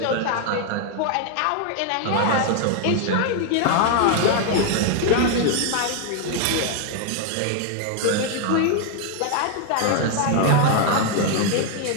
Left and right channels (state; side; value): different; both; correlation 0.00